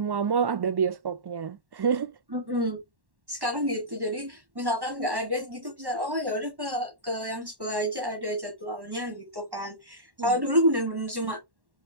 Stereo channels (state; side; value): late; left; 1.1 ms